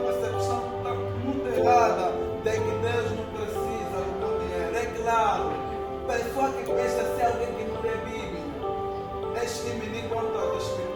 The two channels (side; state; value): both; identical; correlation 1.00